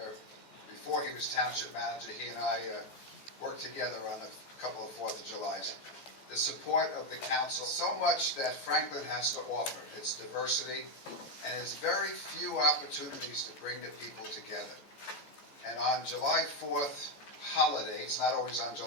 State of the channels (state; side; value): late; right; 14 ms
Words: Before he was Township Manager, he and I worked together on a couple of 4th of Julys. The support of the council, so much that Franklin has to offer. Its diversity, and its very few opportunities to bring the people together. And on July 4th holiday, it's not always on